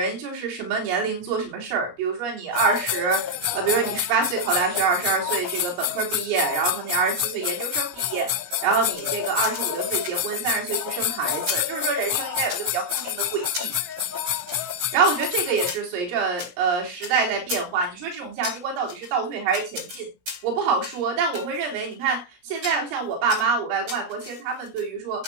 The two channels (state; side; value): late; left; 17 ms